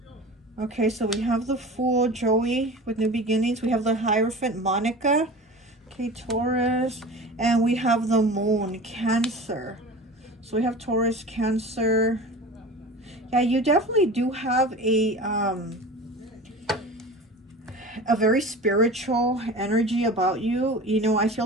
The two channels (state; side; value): normal; both; correlation 0.35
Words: Okay, so we have the Fool, Joey, with New Beginnings. We have the Hierophant, Monica. Okay, Taurus. And we have the Moon, Cancer. So we have Taurus, Cancer. Yeah, you definitely do have a very spiritual energy about you. You know, I feel